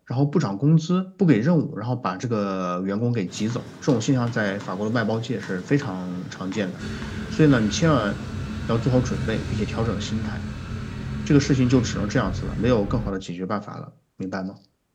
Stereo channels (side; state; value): both; identical; correlation 1.00